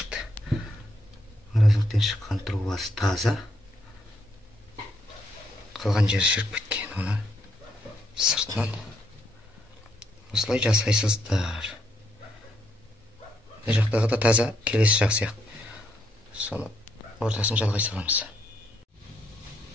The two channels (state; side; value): normal; both; correlation 0.75